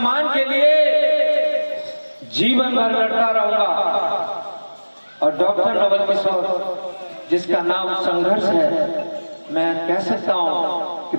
के लिए जीवन भर लड़ता रहूंगा। और डॉक्टर नवल किशोर जिसका नाम संघर्ष है, मैं कह सकता हूं कि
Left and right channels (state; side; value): inverted; both; correlation -1.00